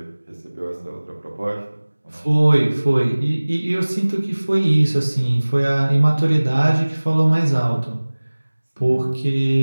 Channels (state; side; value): inverted; both; correlation -1.00